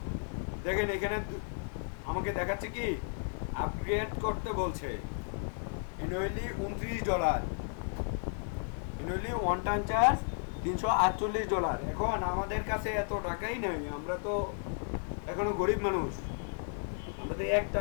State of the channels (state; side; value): silent; right; 55 dB below the other